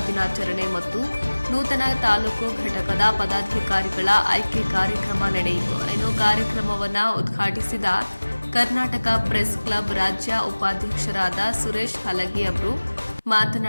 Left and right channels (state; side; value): inverted; both; correlation -1.00